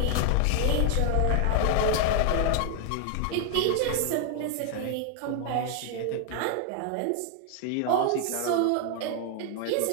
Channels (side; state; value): both; different; correlation 0.00